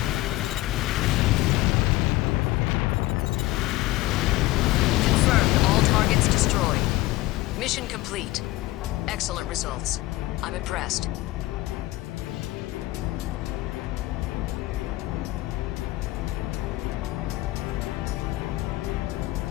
Mission complete. Excellent results. I'm impressed.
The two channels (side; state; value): right; quieter; 18.6 dB